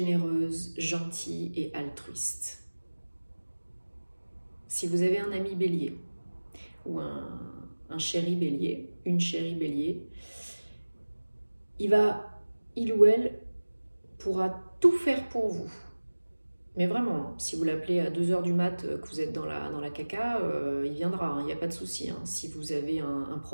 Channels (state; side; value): inverted; both; correlation -1.00